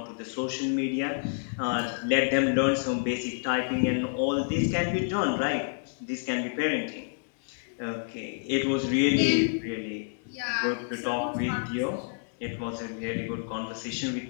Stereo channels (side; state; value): right; silent; digital silence